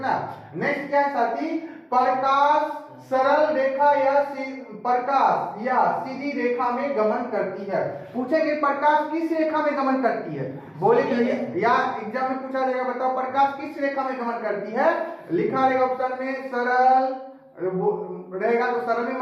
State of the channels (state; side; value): identical; both; correlation 1.00